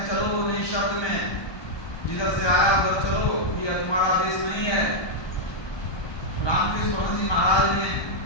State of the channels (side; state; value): right; late; 1.2 ms